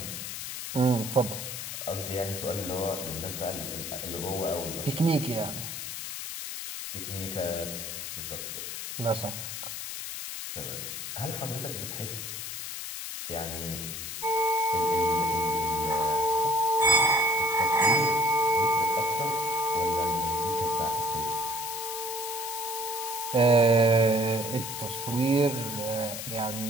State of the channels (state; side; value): noise; left; hiss, 6 dB below the sound